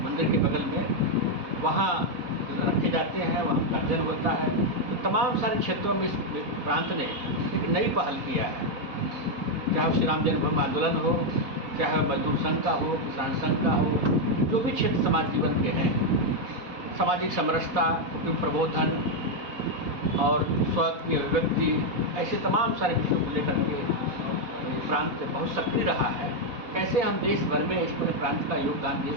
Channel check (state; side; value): late; left; 4.1 ms